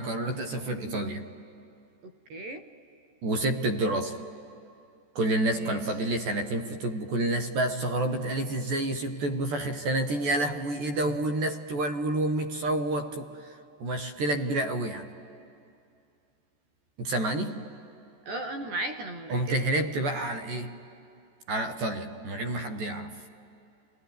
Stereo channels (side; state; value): left; late; 14 ms